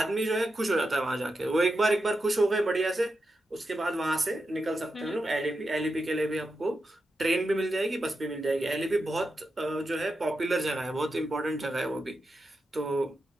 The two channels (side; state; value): both; normal; correlation 0.88